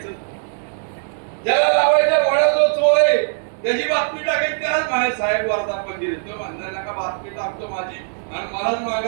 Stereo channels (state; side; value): silent; left; digital silence